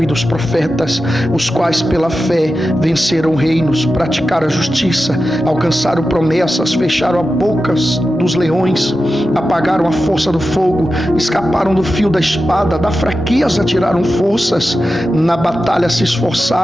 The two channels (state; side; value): normal; both; correlation 0.92